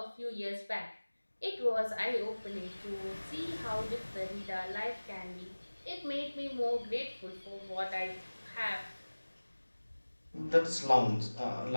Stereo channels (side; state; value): both; inverted; correlation -1.00